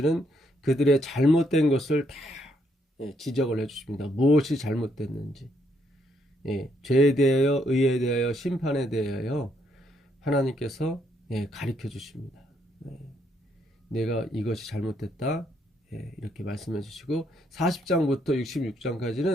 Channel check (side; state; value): both; normal; correlation 0.74